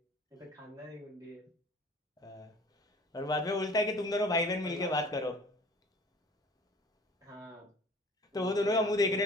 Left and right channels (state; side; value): normal; both; correlation 0.48